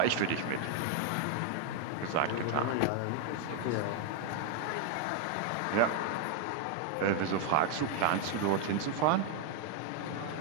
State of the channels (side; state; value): both; different; correlation 0.01